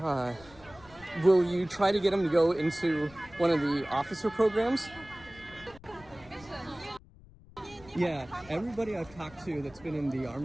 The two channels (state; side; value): noise; left; rumble, 22 dB below the sound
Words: Will you try to get them to go into one of the officer programs? Yeah, everybody I've talked to that's been in the